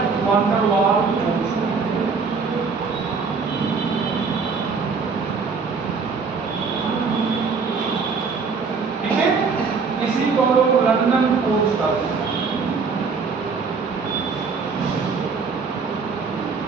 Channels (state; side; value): quieter; left; 5.0 dB